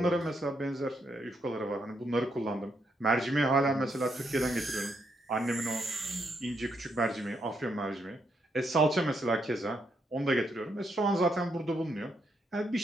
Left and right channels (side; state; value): both; normal; correlation 0.77